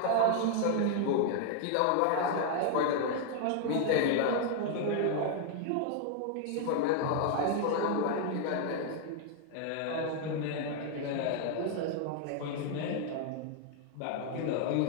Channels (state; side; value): different; both; correlation 0.00